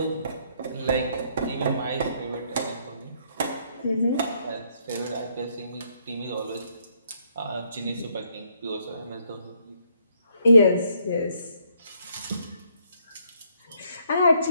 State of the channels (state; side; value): inverted; both; correlation -0.71